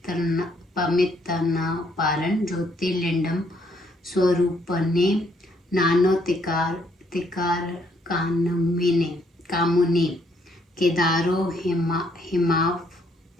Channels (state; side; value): normal; both; correlation 0.70